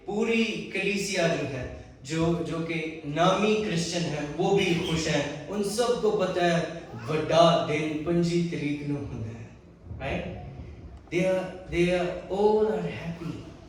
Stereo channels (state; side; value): identical; both; correlation 1.00